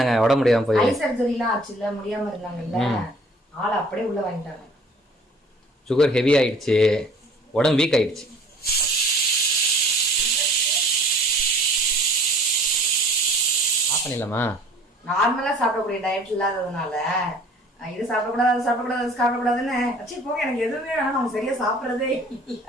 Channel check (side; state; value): both; normal; correlation 0.51